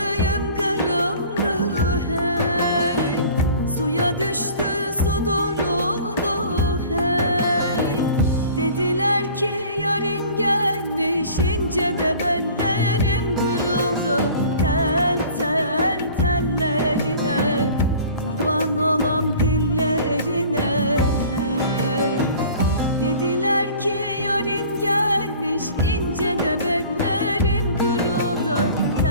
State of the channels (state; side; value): inverted; both; correlation -0.46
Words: kırıldı hey, suya düştü su duruldu hey. Dediler ki yarın gelmiş, ince de bellerim kırıldı. Tel tel tellerine, kurban olam dillerine hey. Dediler ki yarın gelmiş, ince de bellerim kırıldı.